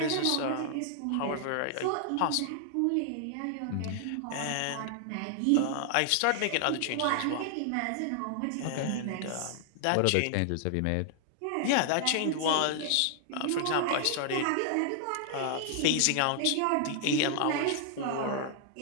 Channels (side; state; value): both; different; correlation 0.00